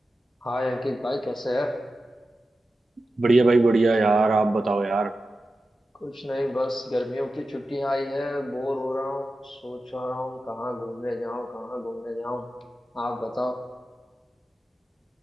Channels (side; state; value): both; normal; correlation 0.93